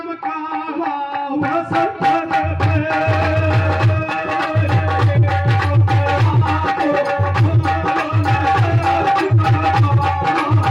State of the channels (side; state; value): both; identical; correlation 1.00